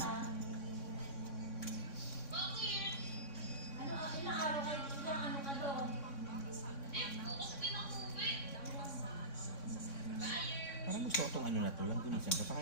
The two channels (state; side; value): late; right; 3.6 ms